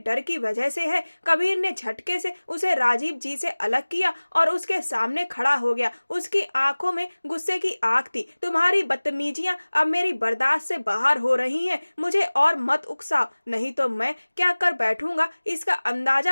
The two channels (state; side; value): inverted; both; correlation -1.00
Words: की वजह से है। कबीर ने झटके से उसे राजीव जी से अलग किया और उसके सामने खड़ा हो गया। उसकी आंखों में गुस्से की आग थी। तुम्हारी बदतमीजियां अब मेरी बर्दाश्त से बाहर हो रही हैं। मुझे और मत उकसाओ, नहीं तो मैं क्या कर बैठूंगा इसका अंदाजा